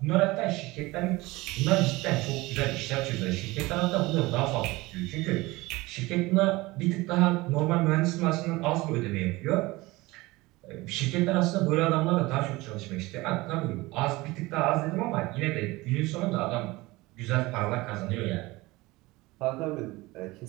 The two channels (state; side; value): quieter; left; 21.1 dB